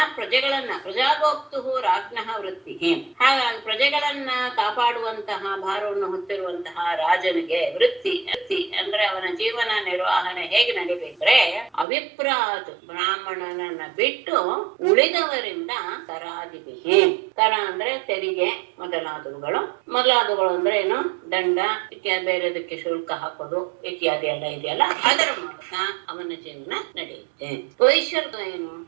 ಪ್ರಜಾಗೋಪ್ತು ರಾಜ್ಞಃ ವೃತ್ತಿ. ಹಾಗಾಗಿ ಪ್ರಜೆಗಳನ್ನ ಕಾಪಾಡುವಂತಹ ಭಾರವನ್ನು ಹೊತ್ತಿರುವಂತಹ ರಾಜನಿಗೆ ವೃತ್ತಿ ಅಂದ್ರೆ ಅವನ ಜೀವನ ನಿರ್ವಹಣೆ ಹೇಗೆ ನಡಿಬೇಕ್ರೆ ಅವಿಪ್ರಾತ್ ಬ್ರಾಹ್ಮಣನನ್ನ ಬಿಟ್ಟು ಉಳಿದವರಿಂದ ಕರಾದಿಬಿಹಿ. ಕರ ಅಂದ್ರೆ ತೆರಿಗೆ ಮೊದಲಾದವುಗಳು ಅಂದ್ರೆ ಏನು, ದಂಡ ಇತ್ಯಾದಿ, ಬೇರೆದಕ್ಕೆ ಶುಲ್ಕ ಹಾಕೋದು ಇತ್ಯಾದಿ ಎಲ್ಲ ಇದೆಯಲ್ಲ, ಅದರ ಮೂಲಕ ಅವನ ಜೀವನ ನಡೆಯುತ್ತೆ. ವೈಶ್ಯರ್ಗ ಏನು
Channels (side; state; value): left; drops out; at 11.9 s